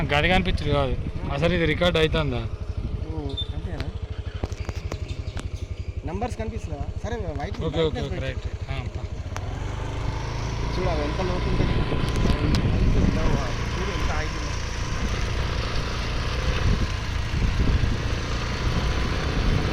గది కనిపించదు కాదు. అసలు ఇది రికార్డ్ అవుతుందా? అంతేనా? నంబర్స్ కనిపిస్తుందా? సరే white okay okay okay right. చూడాలి ఎంత లోతు ఉంటుంది.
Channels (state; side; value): identical; both; correlation 1.00